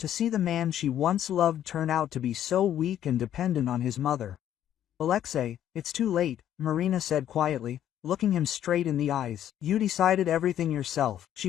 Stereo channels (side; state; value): right; quieter; 11.0 dB